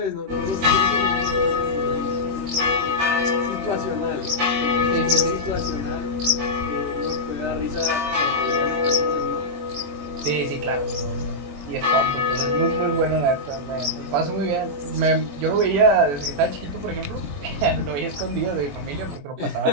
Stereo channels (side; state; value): left; late; 21 ms